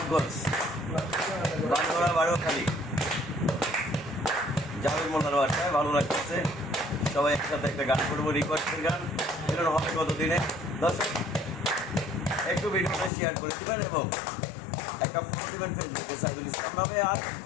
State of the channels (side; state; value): right; drops out; at 13.1 s